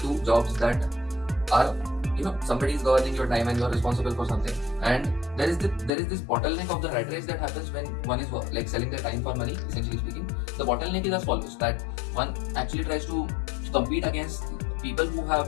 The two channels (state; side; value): drops out; right; at 5.9 s